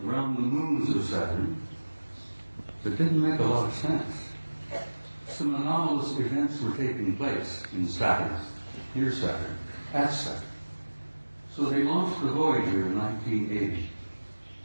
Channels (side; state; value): both; inverted; correlation -1.00